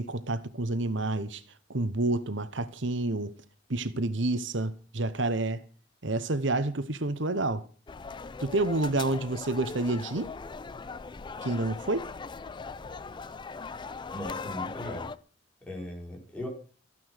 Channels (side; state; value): both; normal; correlation 0.31